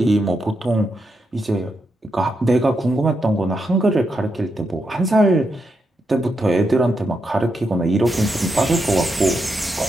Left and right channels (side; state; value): both; normal; correlation 0.83